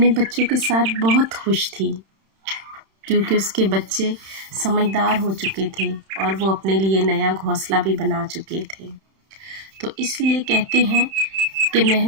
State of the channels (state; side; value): late; left; 31 ms